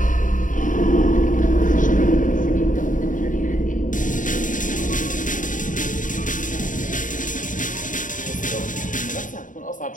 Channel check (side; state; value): right; late; 0.38 ms